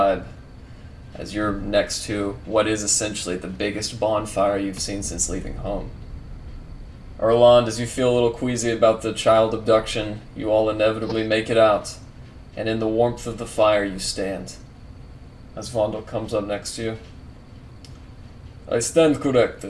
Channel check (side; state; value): both; identical; correlation 1.00